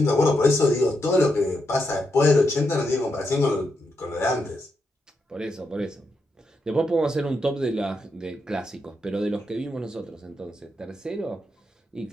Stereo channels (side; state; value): both; normal; correlation 0.83